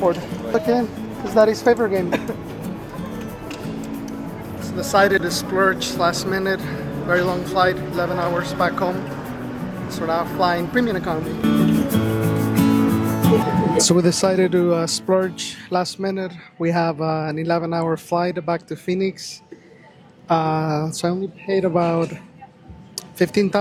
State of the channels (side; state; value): both; identical; correlation 1.00